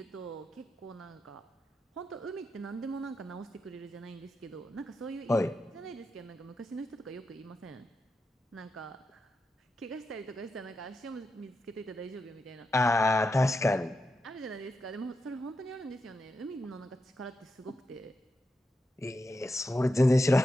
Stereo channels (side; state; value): both; normal; correlation 0.87